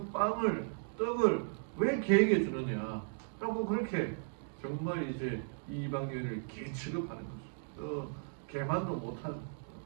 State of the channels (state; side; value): silent; left; digital silence